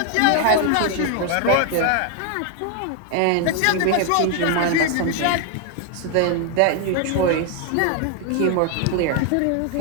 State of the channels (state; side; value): different; both; correlation 0.01